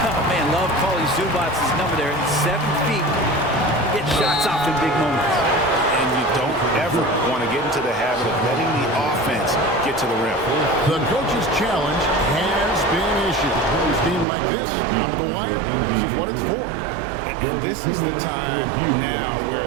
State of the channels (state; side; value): drops out; left; at 14.2 s